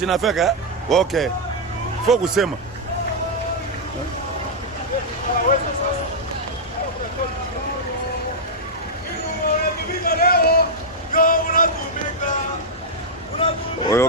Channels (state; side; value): normal; both; correlation -0.05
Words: Okay. Faut kusema.